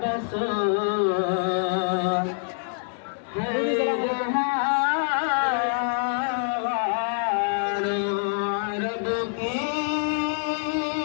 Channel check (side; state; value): right; silent; 61 dB below the other